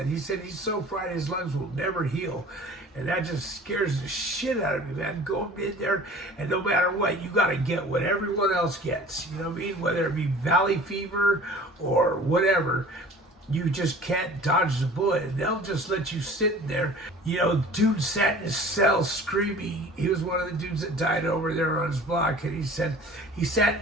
He said he's so fried his lungs will never heal. And that just scares the shit out of me, man. Going in there, and no matter what, you got to get what everyone else gets. You know what I mean? Whether it be valley fever or whatever, you just can't dodge the bullet. And they'll just let you sit there. You know, dude sat in his cell screaming. He was one of the dudes that died over there on his block. And he said he sat in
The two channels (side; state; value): both; normal; correlation 0.45